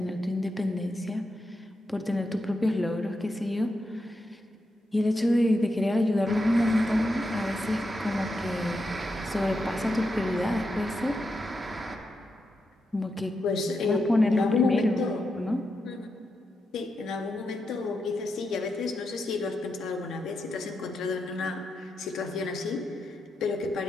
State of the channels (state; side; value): normal; both; correlation 0.85